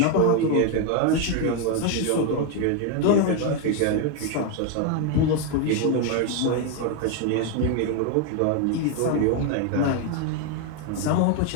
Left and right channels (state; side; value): different; both; correlation 0.01